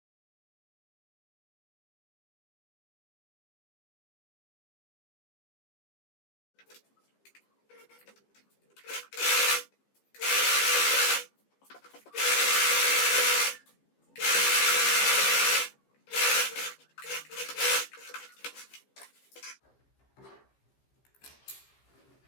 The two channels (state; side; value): late; right; 15 ms